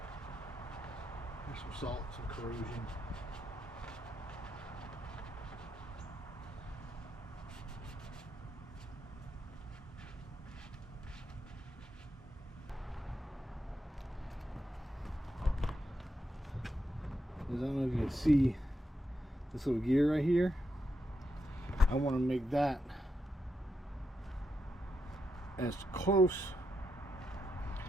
There's some salt, some corrosion. I don't know if you can see this little gear right here. I want to make that as close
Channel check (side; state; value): both; normal; correlation 0.83